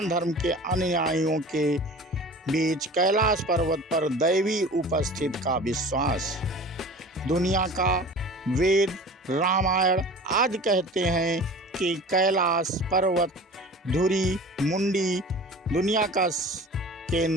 धर्म के अनुयायियों के बीच कैलाश पर्वत पर दैवी उपस्थिति का विश्वास। दुनिया का वेद, रामायण आदि कहते हैं कि कैलाश पर्वत धुरी मुंडी दुनिया का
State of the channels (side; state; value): both; normal; correlation 0.40